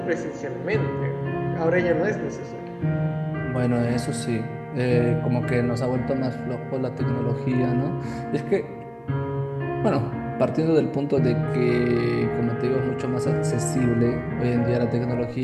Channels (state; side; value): identical; both; correlation 1.00